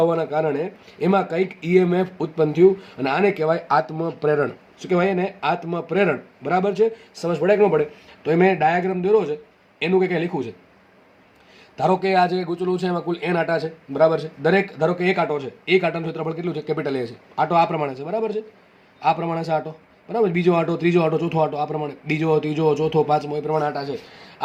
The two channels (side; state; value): both; identical; correlation 1.00